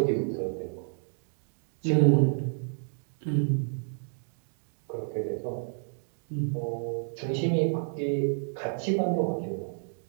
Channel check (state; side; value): silent; left; digital silence